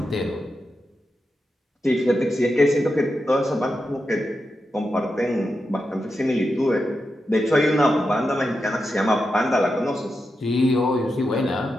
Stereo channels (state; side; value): normal; both; correlation 0.88